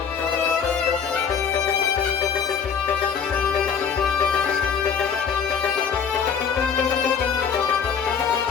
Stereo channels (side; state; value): right; quieter; 6.9 dB